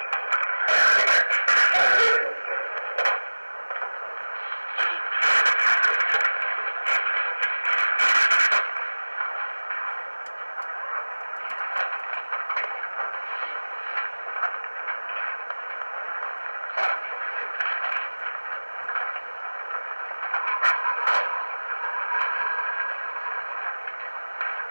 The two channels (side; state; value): both; inverted; correlation -1.00